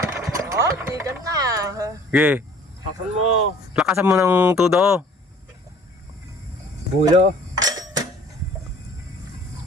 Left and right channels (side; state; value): both; normal; correlation 0.51